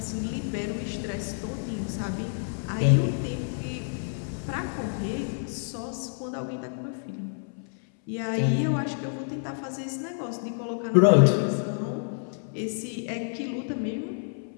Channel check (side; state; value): right; silent; 59 dB below the other